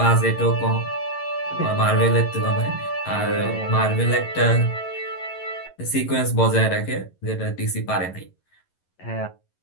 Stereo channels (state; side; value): late; right; 11 ms